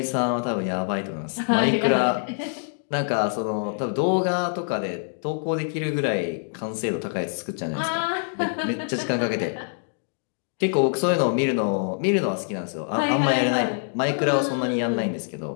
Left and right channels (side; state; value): right; silent; digital silence